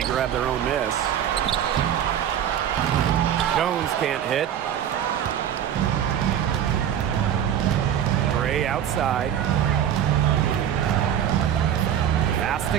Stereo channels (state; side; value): quieter; left; 9.8 dB